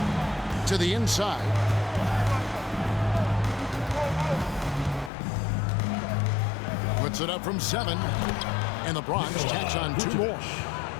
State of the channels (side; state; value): right; drops out; at 5.1 s